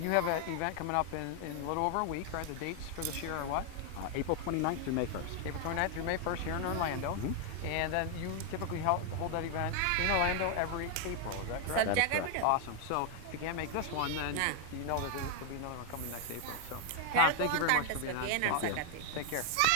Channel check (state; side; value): different; both; correlation 0.01